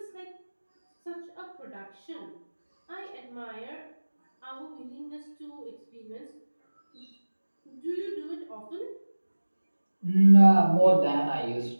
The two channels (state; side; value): inverted; both; correlation -1.00